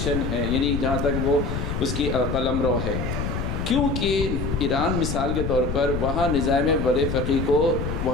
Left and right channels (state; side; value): noise; left; rumble, 3 dB below the sound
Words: ہے، یعنی جہاں تک وہ اس کی قلم رو ہے، کیونکہ ایران مثال کے طور پر وہاں نظام ولی فقیہ کو